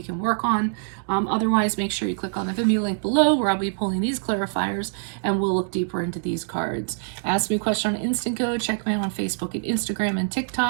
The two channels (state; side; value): silent; left; digital silence